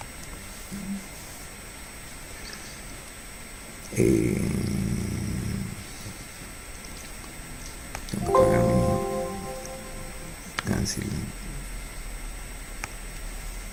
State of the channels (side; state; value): both; identical; correlation 1.00